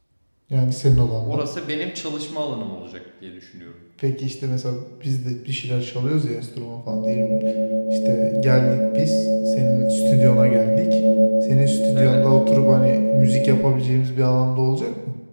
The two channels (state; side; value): inverted; both; correlation -1.00